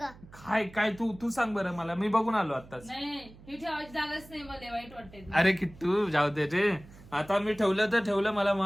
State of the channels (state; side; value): noise; right; hum, 21 dB below the sound